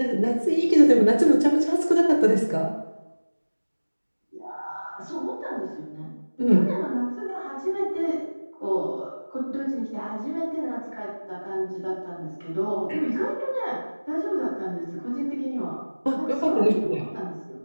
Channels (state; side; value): inverted; both; correlation -1.00